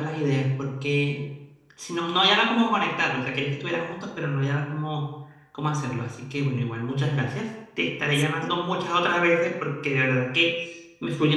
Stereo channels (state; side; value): identical; both; correlation 1.00